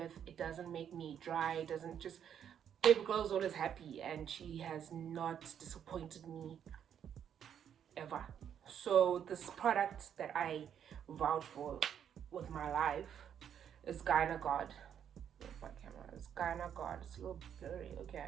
It doesn't make me dry. It doesn't just, baby girl is always happy and she has not disappointed me ever. So this product that I vowed for with my life is Gynagod. My camera is Gynagod. It's a little blurry. Okay,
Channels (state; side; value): quieter; left; 8.9 dB